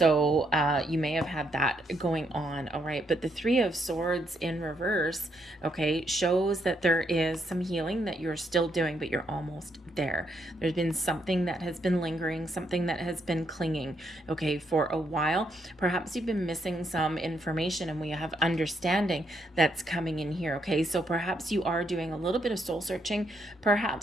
you may have had that going on. All right, but the Three of Swords in reverse, okay, shows that there is some healing that you're still doing, but you're almost there. There's been something that has been lingering, something that has been clinging, okay, for a while. Perhaps you've been missing some information, and we have understanding that's coming in here. Okay, so perhaps you are doing a little bit of soul searching,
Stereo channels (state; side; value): normal; both; correlation 0.76